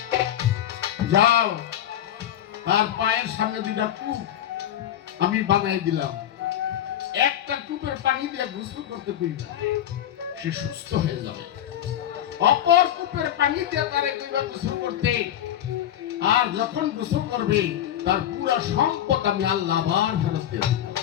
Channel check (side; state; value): right; quieter; 11.2 dB